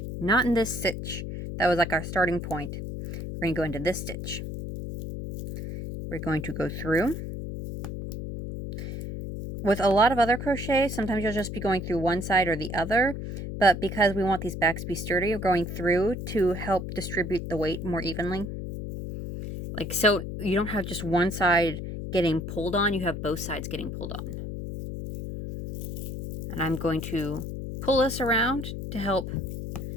not in this stitch. That was like our starting point. We're going to go into this stitch. We're going to go through. With a lot of other crochet, sometimes you'll just be going through one side or the other, but because we want these backs to be sturdy, we're going through to help distribute the weight more evenly. Like, so you don't have just one side getting pulled on, you have both sides getting pulled on. And I'm going to pull this around to help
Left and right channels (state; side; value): noise; left; hum, 6 dB below the sound